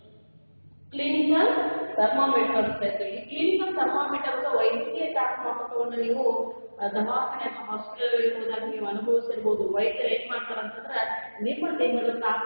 ಕ್ಲಿನಿಕಲ್ ಥರ್ಮಾಮೀಟರ್ ಅಂತ ಹೇಳ್ತೀವಿ. ಈ ಕ್ಲಿನಿಕಲ್ ಥರ್ಮಾಮೀಟರ್ ಅಥವಾ ವೈದ್ಯಕೀಯ ತಾಪಮಾಪಕವನ್ನು ನೀವು ದವಾಖಾನೆ ಅಥವಾ ಹಾಸ್ಪಿಟಲ್ ಹೋದಾಗ ನೀವು ಅನುಭವಿಸಿರ್ಬೋದು. ವೈದ್ಯರು ಏನ್ ಮಾಡ್ತಾರೆ ಅಂತಂದ್ರೆ ನಿಮ್ಮ ದೇಹದ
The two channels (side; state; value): both; inverted; correlation -1.00